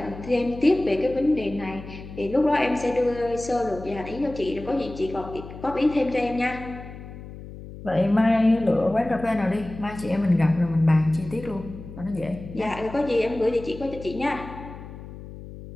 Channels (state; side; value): noise; left; hum, 14 dB below the sound